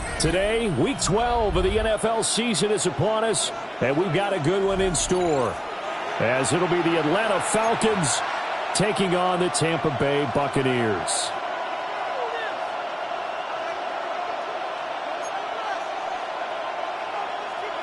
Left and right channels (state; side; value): identical; both; correlation 1.00